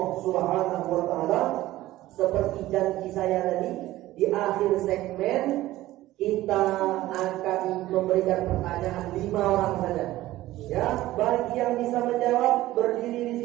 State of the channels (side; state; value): left; quieter; 16.0 dB